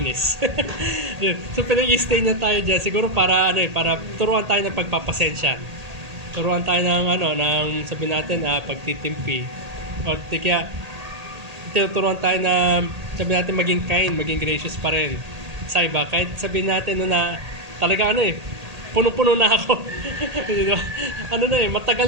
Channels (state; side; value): late; left; 1.8 ms